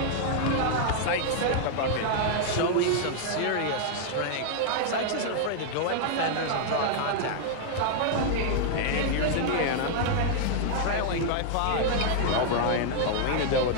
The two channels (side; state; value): both; different; correlation -0.01